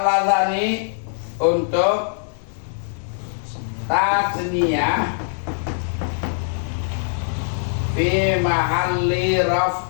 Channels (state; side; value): silent; right; 61 dB below the other